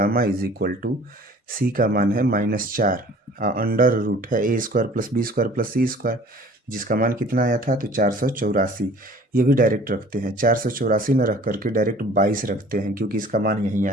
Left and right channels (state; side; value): normal; both; correlation 0.49